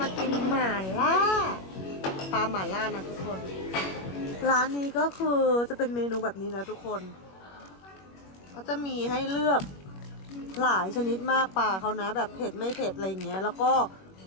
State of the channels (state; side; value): late; right; 21 ms